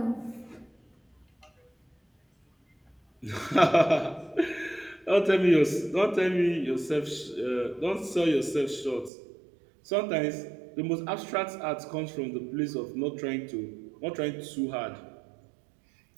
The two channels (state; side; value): drops out; left; at 9.1 s